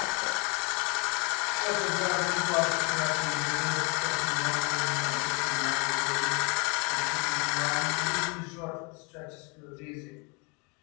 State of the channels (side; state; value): right; quieter; 31.9 dB